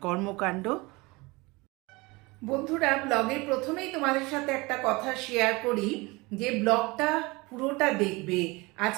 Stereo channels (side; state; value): left; quieter; 24.1 dB